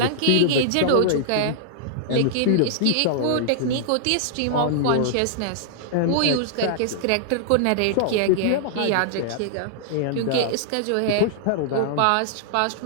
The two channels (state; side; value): different; both; correlation -0.01